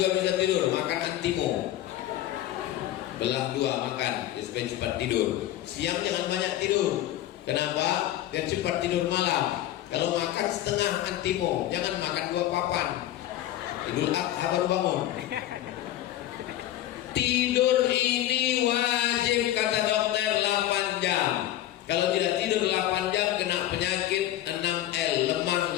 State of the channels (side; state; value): right; quieter; 13.4 dB